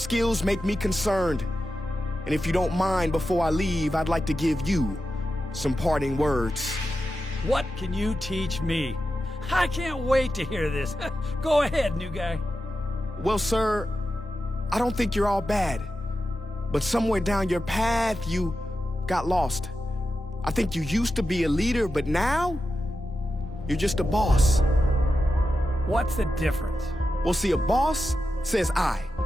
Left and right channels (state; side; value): normal; both; correlation 0.90